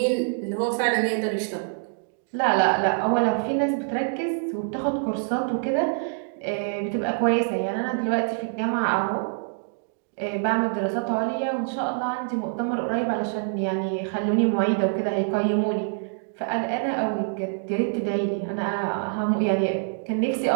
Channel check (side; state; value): left; silent; digital silence